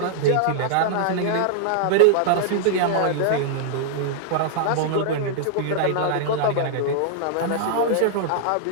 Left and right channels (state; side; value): different; both; correlation -0.01